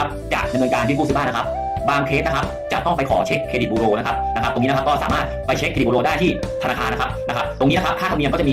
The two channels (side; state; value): both; identical; correlation 1.00